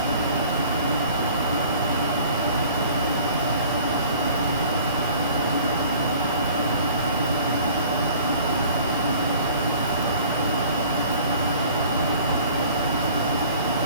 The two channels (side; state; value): both; inverted; correlation -0.49